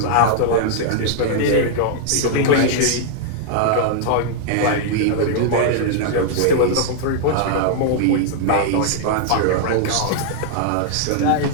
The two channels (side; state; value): both; different; correlation -0.01